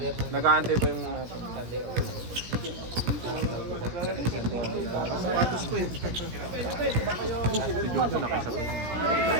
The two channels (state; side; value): late; left; 17 ms